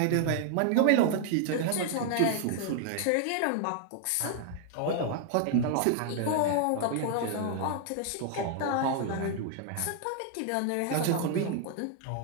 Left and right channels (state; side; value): different; both; correlation 0.00